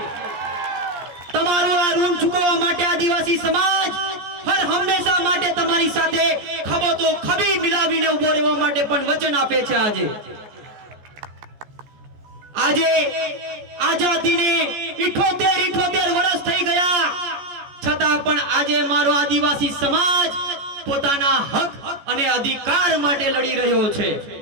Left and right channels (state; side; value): late; left; 14 ms